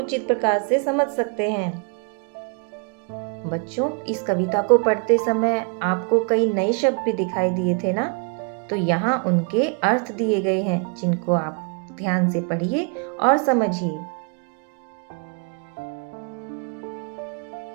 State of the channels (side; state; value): left; quieter; 35.7 dB